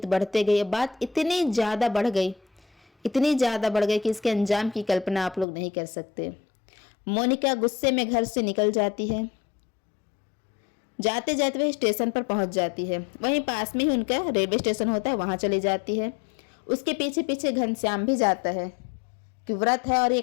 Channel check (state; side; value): drops out; right; at 5.5 s